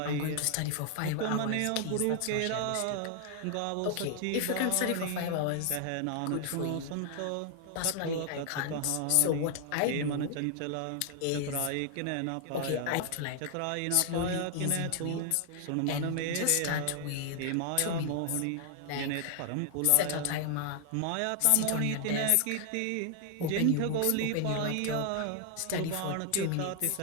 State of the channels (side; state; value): both; different; correlation 0.00